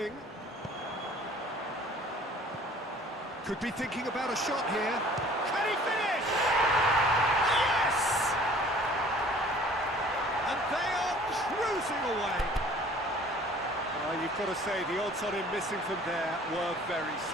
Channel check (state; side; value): normal; both; correlation 0.51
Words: Could be thinking about a shot here. Can he finish? Yes! And they are cruising away. You've got to say, the odds on him missing from there were very